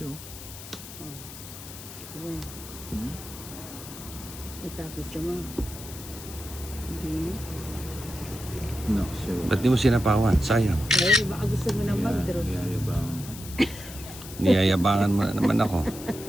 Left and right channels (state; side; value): noise; left; hiss, 13 dB below the sound